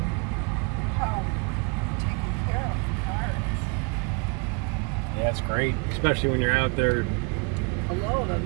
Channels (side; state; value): left; quieter; 32.6 dB